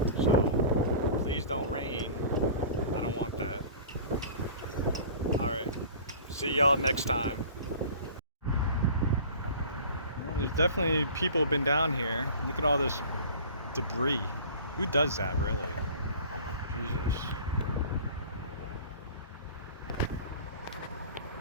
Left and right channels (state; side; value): inverted; both; correlation -0.42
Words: So please don't rain. I don't want that. Alright, see y'all next time. Well, there's definitely people have been down here. Look at all this debris. Who does that, really? Jesus.